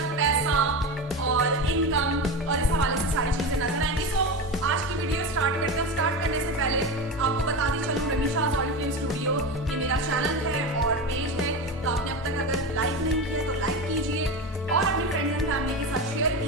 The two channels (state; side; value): normal; both; correlation 0.22